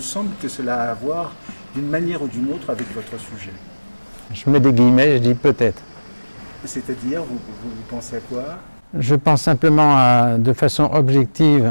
que cela a à voir d'une manière ou d'une autre avec votre sujet? Je mets des guillemets, je dis peut-être. C'est-à-dire, vous pensez à quoi? Je pense simplement, de façon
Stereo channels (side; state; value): both; inverted; correlation -1.00